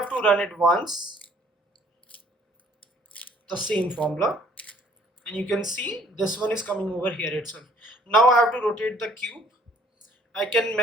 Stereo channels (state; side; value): normal; both; correlation 0.60